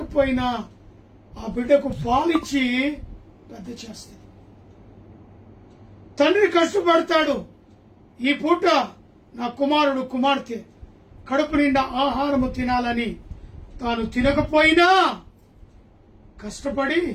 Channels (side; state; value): both; identical; correlation 1.00